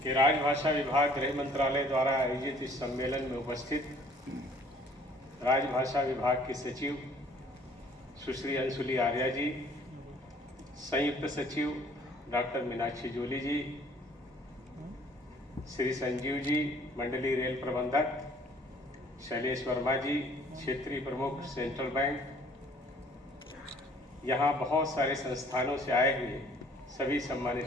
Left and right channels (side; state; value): both; normal; correlation 0.56